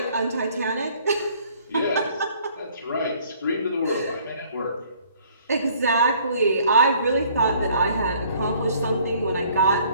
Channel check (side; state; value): both; inverted; correlation -0.58